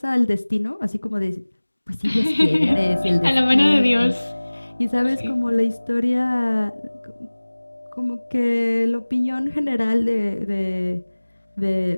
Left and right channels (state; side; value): inverted; both; correlation -1.00